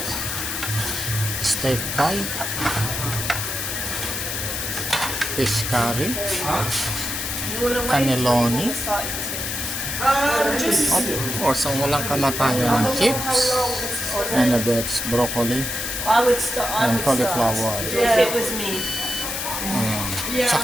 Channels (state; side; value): noise; left; hiss, 3 dB below the sound